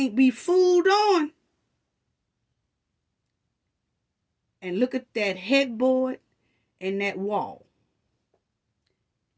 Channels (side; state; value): both; identical; correlation 1.00